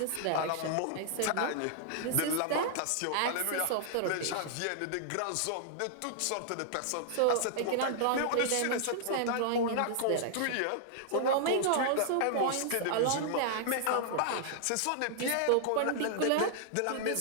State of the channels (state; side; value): different; both; correlation -0.01